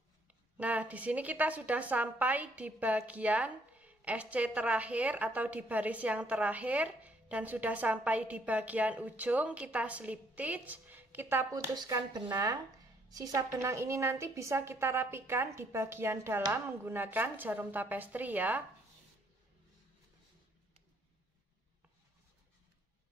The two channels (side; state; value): both; normal; correlation 0.67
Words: Nah, di sini kita sudah sampai di bagian SC terakhir atau di baris yang terakhir dan sudah sampai di bagian ujung. Kita slip stitch, kita putuskan benang. Sisa benang ini nanti bisa kita rapikan di bagian dalam menggunakan jarum tapestri ya.